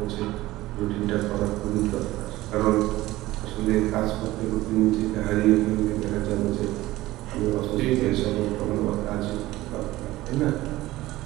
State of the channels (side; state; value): left; quieter; 17.3 dB